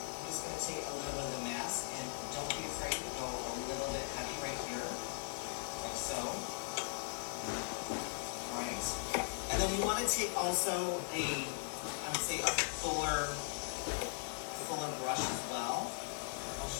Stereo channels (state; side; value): silent; right; 52 dB below the other